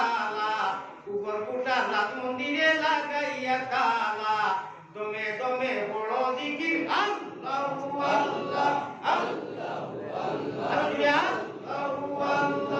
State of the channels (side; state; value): both; identical; correlation 1.00